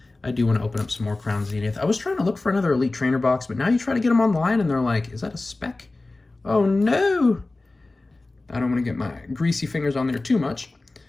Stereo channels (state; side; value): quieter; right; 3.1 dB